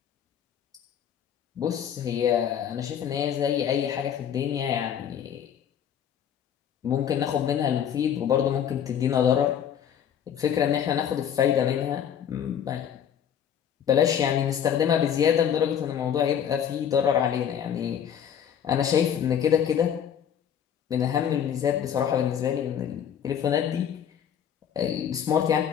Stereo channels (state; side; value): quieter; right; 8.9 dB